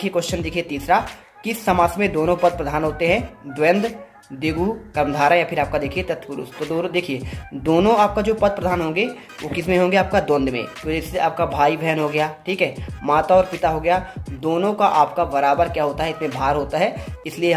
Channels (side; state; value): both; identical; correlation 1.00